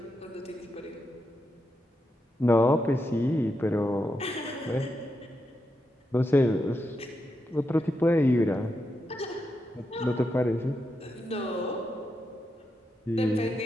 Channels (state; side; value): normal; both; correlation 0.85